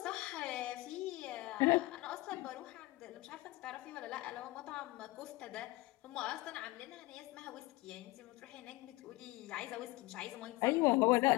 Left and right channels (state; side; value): quieter; right; 20.5 dB